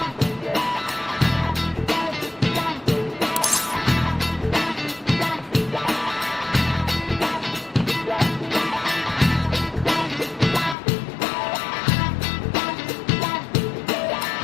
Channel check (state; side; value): drops out; right; at 10.8 s